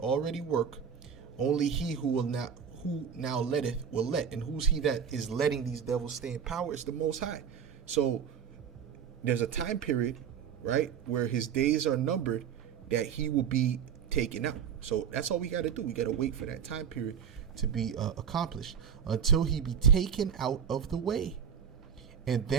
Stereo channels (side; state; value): left; quieter; 7.6 dB